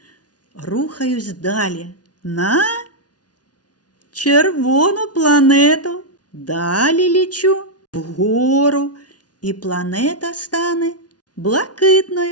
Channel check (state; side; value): late; right; 0.69 ms